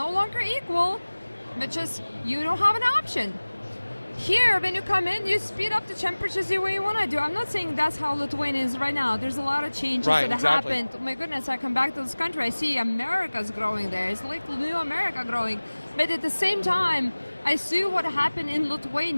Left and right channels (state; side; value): inverted; both; correlation -1.00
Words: longer equal, which is you don't have an option. Here, when you come in, you speed up the temperatures the way you want to do. I'm not saying that's how Lithuania is right now. There's a lot of changes that happened. Oh my goodness, I come back to this country, I see America's growing there. It's like new America growing. But at the same time, I see what happened in